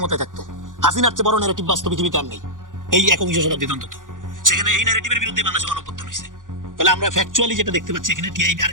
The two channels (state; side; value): late; left; 0.88 ms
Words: থাকতো। হাসিনার চেয়ে বড় ন্যারেটিভ বাস্তব পৃথিবীতে আর নেই, এই 21 শতাব্দীতে অন্তত। সেখানে এই ন্যারেটিভের বিরুদ্ধে বাংলাদেশে গণঅভ্যুত্থান হয়েছে। তাহলে আমরা ফ্যাকচুয়ালি যেটা দেখতে পাচ্ছি এখানে, টিআইবি